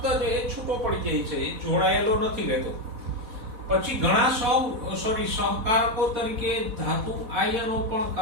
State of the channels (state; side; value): late; left; 4.1 ms